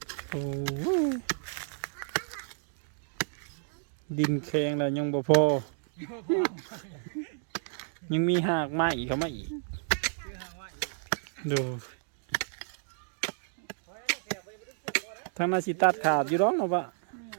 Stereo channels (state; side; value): silent; left; digital silence